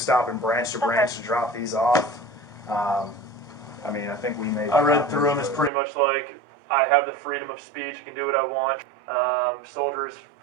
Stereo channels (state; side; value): drops out; left; at 5.7 s